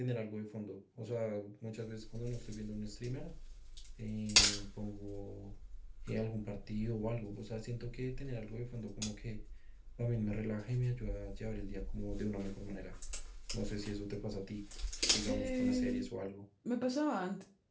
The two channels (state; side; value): identical; both; correlation 1.00